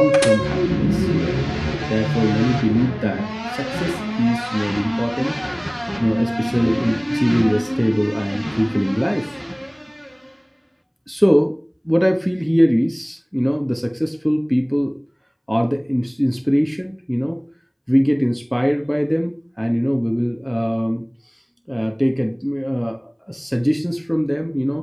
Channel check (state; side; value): identical; both; correlation 1.00